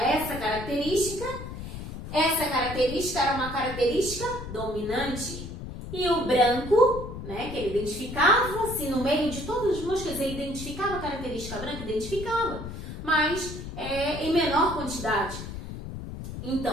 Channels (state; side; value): noise; left; rumble, 9 dB below the sound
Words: essa característica era uma característica dominante. E o branco, né, que ele identificava, se no meio de todas as moscas ele identificava a característica branca, identificava, mas em menor quantidade.